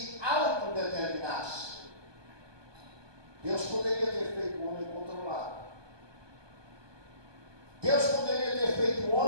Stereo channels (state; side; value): late; left; 1.2 ms